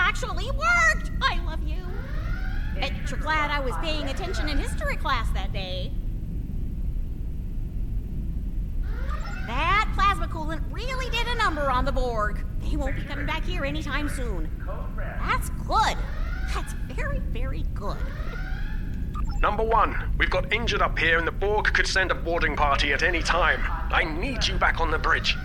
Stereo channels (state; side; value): identical; both; correlation 1.00